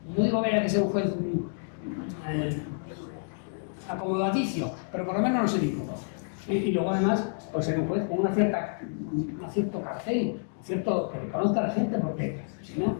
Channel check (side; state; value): right; silent; digital silence